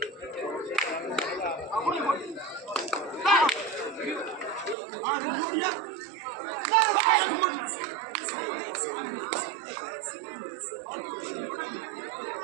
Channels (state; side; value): drops out; left; at 4.8 s